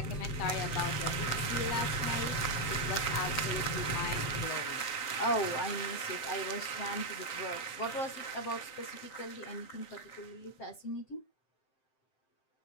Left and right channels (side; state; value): right; late; 7.8 ms